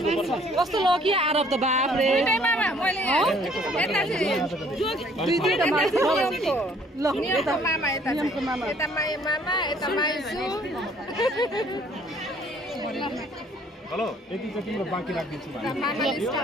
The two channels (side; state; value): both; normal; correlation 0.60